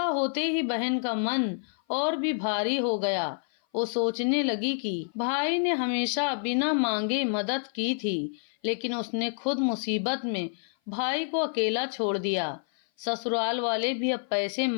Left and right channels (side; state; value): right; silent; 56 dB below the other